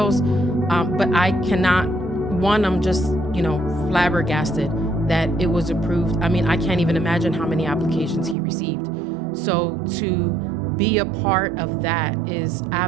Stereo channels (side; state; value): left; drops out; at 8.3 s